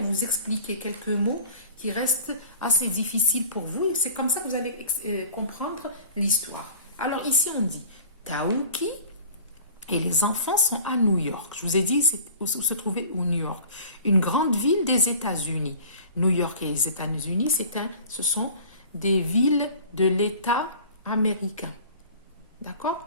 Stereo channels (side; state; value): both; inverted; correlation -0.43